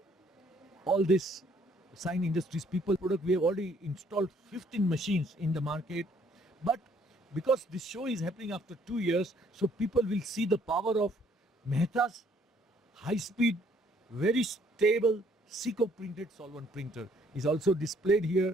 all this sign industries people product. We have already installed 15 machines in the market, but because this show is happening after 2 years, so people will see the power of Mehta's high speed, very stable Seco printed solvent printer is also displayed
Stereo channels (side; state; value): both; normal; correlation 0.64